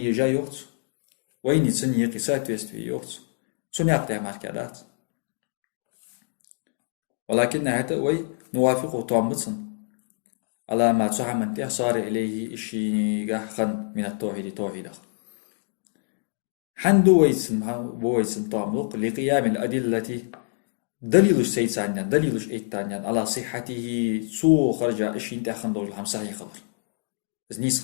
يوت ويني سن يقيسات ويست في يوت سن يقطع ماركادات ولكن حتى وي نوافقه طعم بوتسن على ما تحمل صار إليه إشي خن من التوحيد توحيده حندو ويسن طاملق لقيام الأدلة دليلش سيتانيا دليلش إيتانيا على صحته سو خرج إشي انت خندو الهم صحيح خبر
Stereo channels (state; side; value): silent; right; digital silence